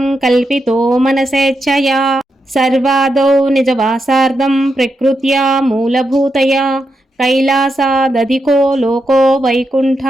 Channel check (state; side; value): normal; both; correlation 0.85